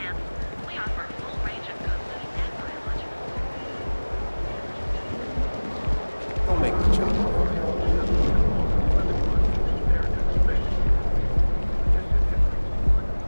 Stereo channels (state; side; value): inverted; both; correlation -1.00